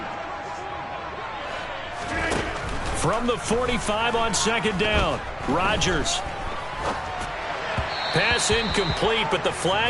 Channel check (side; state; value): both; identical; correlation 1.00